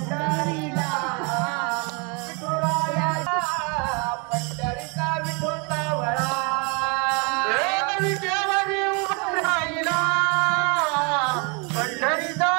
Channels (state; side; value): quieter; left; 32.6 dB